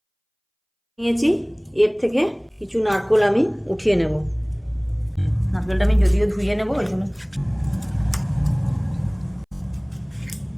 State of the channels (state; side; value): identical; both; correlation 1.00